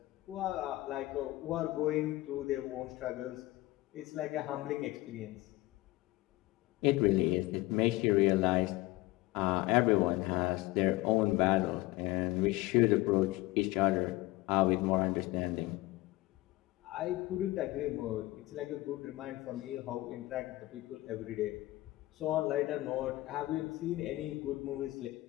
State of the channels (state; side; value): quieter; right; 19.0 dB